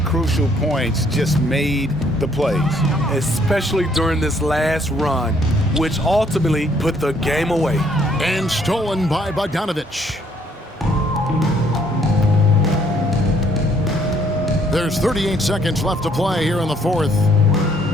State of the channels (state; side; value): normal; both; correlation 0.66